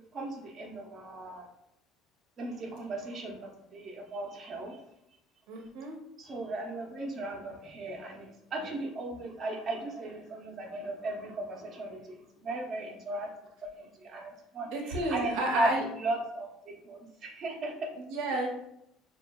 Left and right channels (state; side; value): normal; both; correlation 0.57